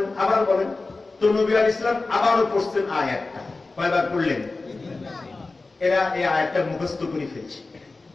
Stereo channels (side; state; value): right; quieter; 3.5 dB